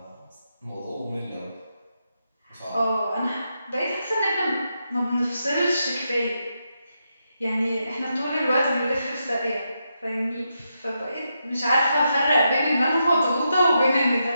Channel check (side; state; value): both; inverted; correlation -0.84